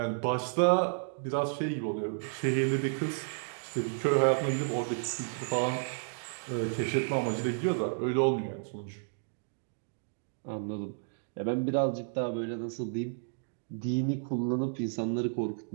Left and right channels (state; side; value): silent; left; digital silence